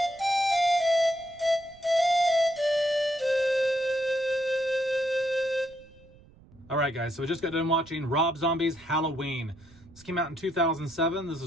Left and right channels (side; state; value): right; noise; rumble, 26 dB below the sound